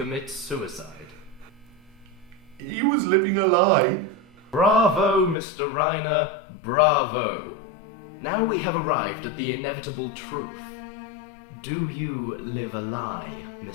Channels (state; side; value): drops out; right; at 5.4 s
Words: suicide? He was living a lie. Bravo, Mr. Reiner, bravo. Now we have arrived at the inevitable truth. Do you live a lie,